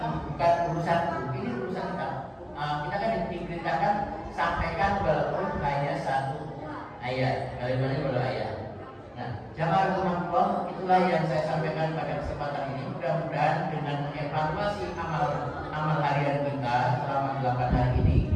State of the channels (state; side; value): identical; both; correlation 1.00